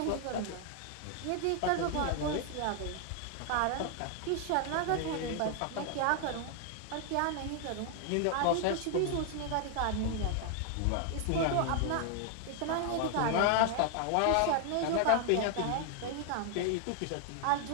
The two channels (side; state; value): both; different; correlation 0.00